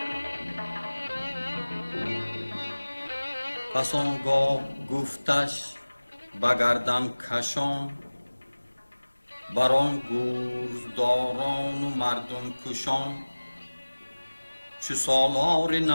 پس آنگاه گفتش به گردن کشان، بران گوزداران و مردم کشان. چو سالار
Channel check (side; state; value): both; inverted; correlation -1.00